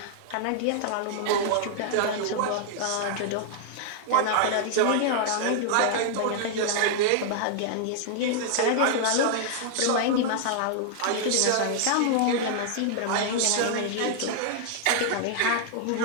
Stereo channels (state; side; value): different; both; correlation -0.01